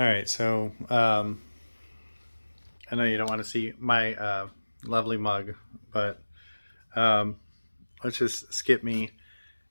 right, so I know you don't want to see my lovely mug, but um, let's just skip me.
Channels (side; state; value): both; inverted; correlation -1.00